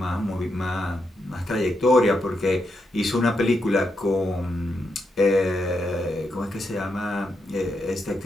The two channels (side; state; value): both; normal; correlation 0.83